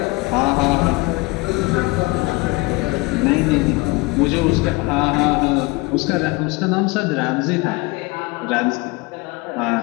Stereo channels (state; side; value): quieter; right; 24.4 dB